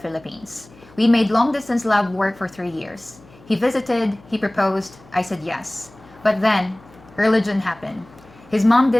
We made long-distance love work for 3 years. He visited, he proposed, I said yes. But then, religion happened. His mom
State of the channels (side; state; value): left; noise; hum, 25 dB below the sound